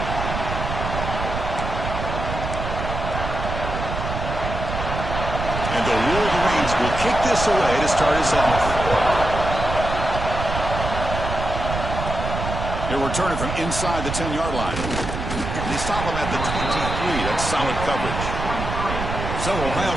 And the Wolverines will kick this away to start us off. He'll return it from inside the 10-yard line. They stop him at the 23. That's solid coverage. So Ohio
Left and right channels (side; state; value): right; noise; rumble, 5 dB below the sound